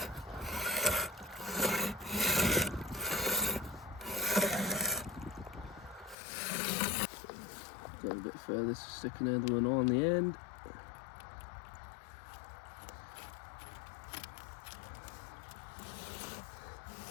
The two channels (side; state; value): right; drops out; at 6.2 s